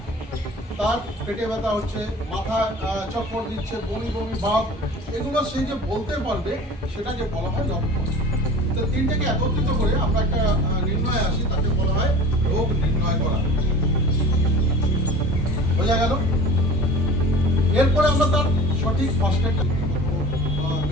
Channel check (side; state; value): both; normal; correlation 0.40